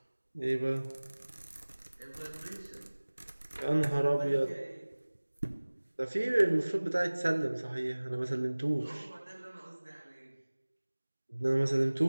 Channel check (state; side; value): inverted; both; correlation -1.00